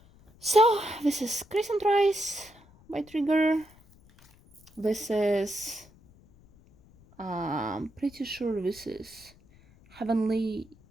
So this is Crescent Rise by Trigger. This is pretty sure this is Heavenly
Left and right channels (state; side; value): noise; left; rumble, 27 dB below the sound